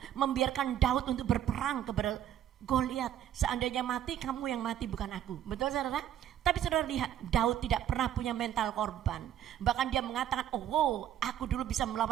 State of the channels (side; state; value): left; quieter; 10.9 dB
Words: membiarkan Daud untuk berperang kepada Goliat. Seandainya mati, kamu yang mati bukan aku. Betul saudara? Tapi saudara lihat, Daud tidak pernah punya mental korban. Bahkan dia mengatakan, oh aku dulu bisa